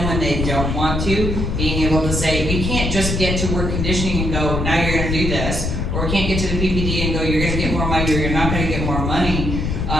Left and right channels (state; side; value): noise; left; rumble, 1 dB below the sound